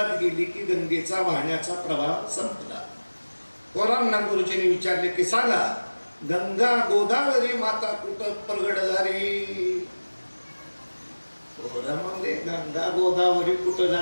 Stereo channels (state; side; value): inverted; both; correlation -1.00